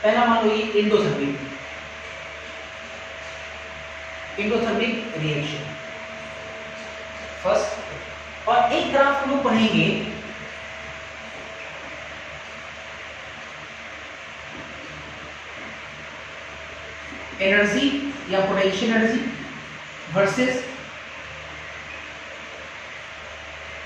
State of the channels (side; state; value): both; identical; correlation 1.00